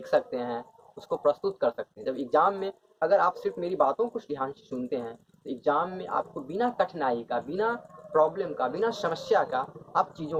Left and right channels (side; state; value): both; identical; correlation 1.00